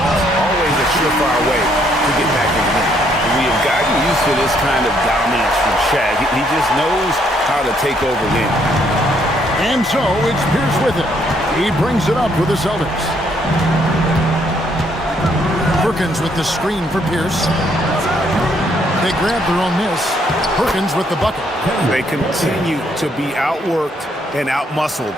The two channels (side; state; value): both; normal; correlation 0.70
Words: Always a surefire way to get back in the game. We have gotten used to this kind of dominance from Shaq. He just knows how to take over games. And so it's Pierce with it. He brings it up with the Celtics. Perkins with the screen for Pierce. They grab their own miss. Perkins with the bucket. They continue to be outworked and outmuscled